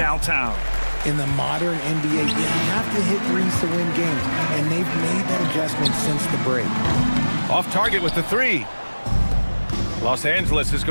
In the modern NBA, you have to hit threes to win games, and they've made that adjustment since the break. Off target with the 3. Los Angeles has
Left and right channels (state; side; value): inverted; both; correlation -1.00